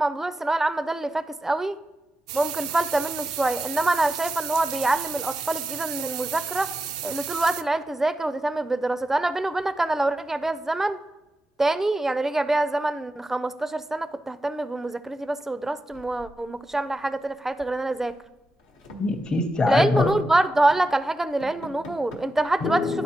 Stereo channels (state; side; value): normal; both; correlation 0.89